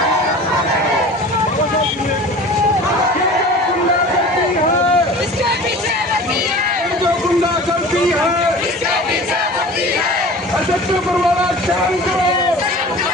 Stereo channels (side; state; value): both; normal; correlation 0.39